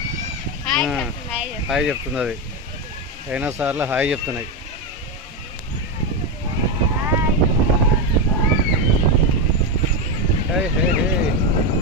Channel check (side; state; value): both; normal; correlation 0.10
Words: హాయ్ చెప్తుంది అది. డైనోసార్లు హాయ్ చెప్తున్నాయి. హే హే హే